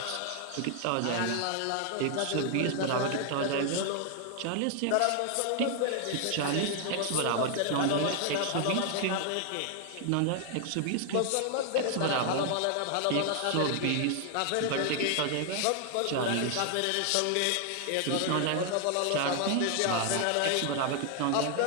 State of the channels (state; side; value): different; both; correlation 0.00